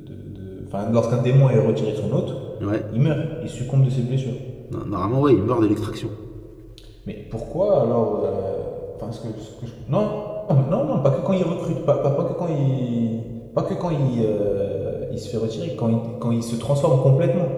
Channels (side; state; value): both; identical; correlation 1.00